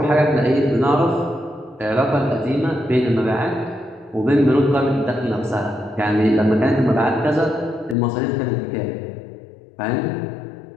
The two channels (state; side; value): drops out; right; at 8.0 s